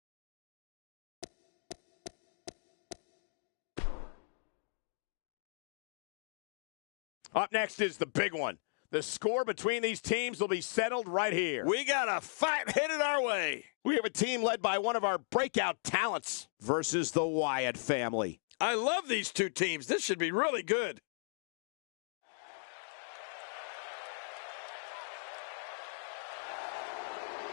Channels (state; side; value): silent; right; digital silence